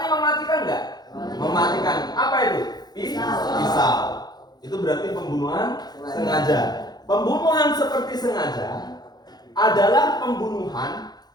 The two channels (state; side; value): late; right; 0.19 ms